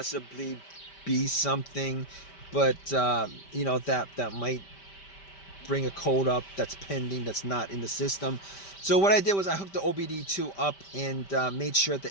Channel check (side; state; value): right; late; 5.1 ms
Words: be something, but that might bring a code up that's pending, that's not in the system. So what I did was I hooked the OBD2 up and made sure